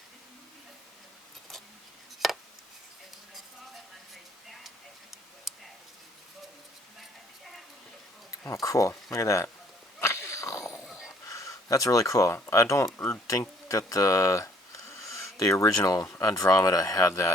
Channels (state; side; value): normal; both; correlation 0.61